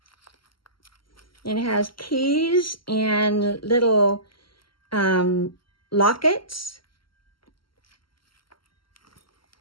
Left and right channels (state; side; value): late; right; 0.73 ms